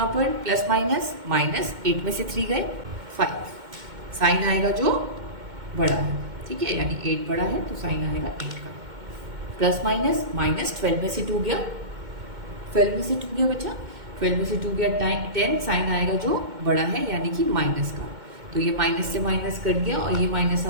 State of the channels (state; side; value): late; left; 2.1 ms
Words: पर प्लस माइनस माइनस 8 में से 3 गए 5, साइन आएगा जो बड़ा है। ठीक है, यानी 8 बड़ा है तो साइन आएगा 8 का। प्लस माइनस माइनस 12 में से 2 गया, 12 में से 2 गया बच्चा, 12 में से 2 गया 10, साइन आएगा जो बड़ा है यानी कि माइनस का। तो ये माइनस से माइनस कट गया और ये माइनस